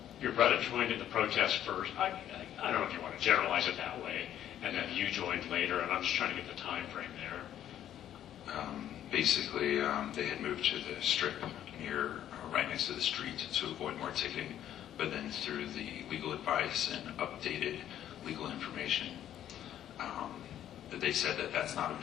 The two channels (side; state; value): right; quieter; 11.1 dB